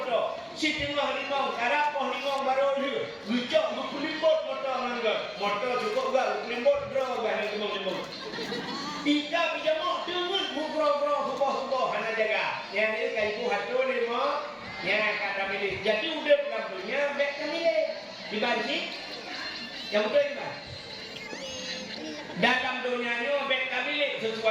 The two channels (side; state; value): both; identical; correlation 1.00